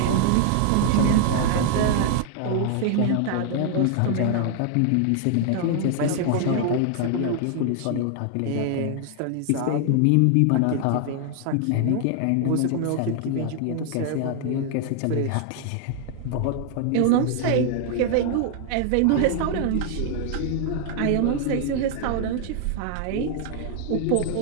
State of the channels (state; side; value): different; both; correlation 0.00